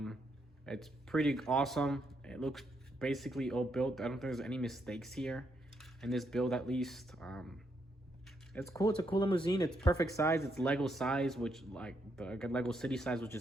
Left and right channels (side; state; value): both; normal; correlation 0.78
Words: It's pretty awesome. It looks basically all built. I don't think there's any mistakes here in this build, at least. It's cool. It's a cool limousine. It's perfect size. It's Lego size, which like the Lego City size, which